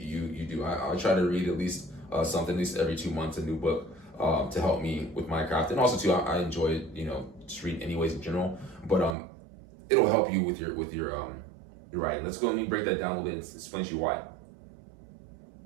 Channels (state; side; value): drops out; left; at 9.2 s